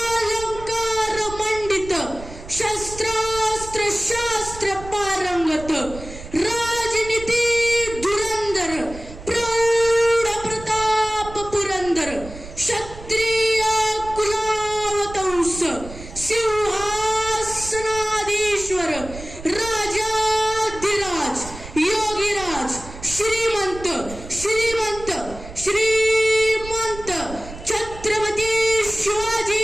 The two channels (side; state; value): right; noise; rumble, 14 dB below the sound